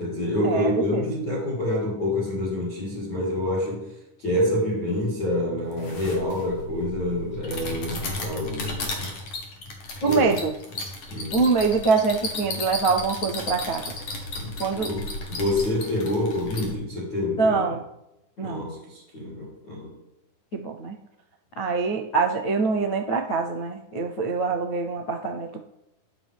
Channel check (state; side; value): late; right; 10 ms